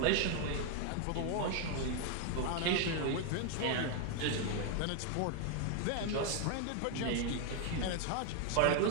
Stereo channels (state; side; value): different; both; correlation 0.00